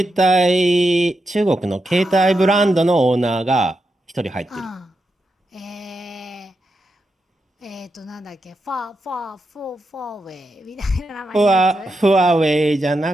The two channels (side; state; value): both; normal; correlation 0.86